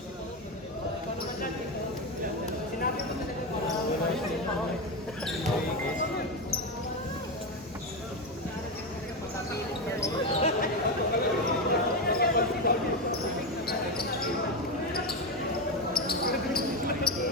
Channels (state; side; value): normal; both; correlation 0.12